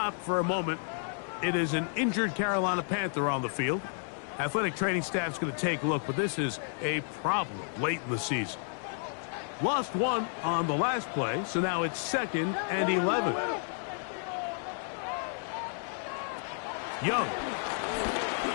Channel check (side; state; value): right; silent; 57 dB below the other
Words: for a moment. It is an injured Carolina Panther on the field. Athletic training staff's going to take a look, but this is a problem late in the season. Lost 1 on the last play, so now it's 2nd and 11. Young.